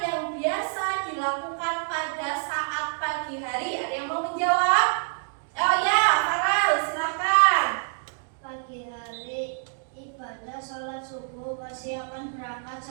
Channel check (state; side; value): silent; left; digital silence